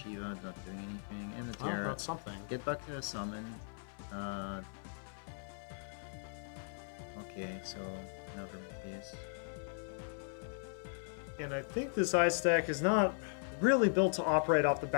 not doing anything. And the Oh, Terra. that's something. Get back to the summon. Okay, so another Matthias. And I think this ice deck is not really built to operate off the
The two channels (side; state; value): right; silent; 52 dB below the other